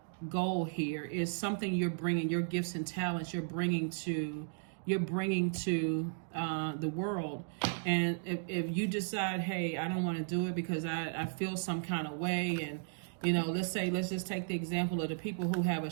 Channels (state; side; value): silent; left; digital silence